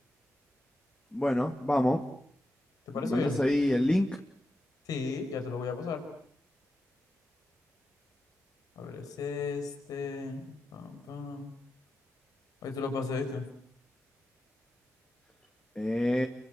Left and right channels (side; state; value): both; normal; correlation 0.89